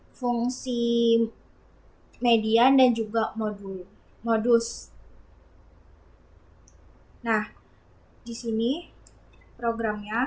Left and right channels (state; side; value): identical; both; correlation 1.00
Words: fungsi median dan juga modus. Nah, di sini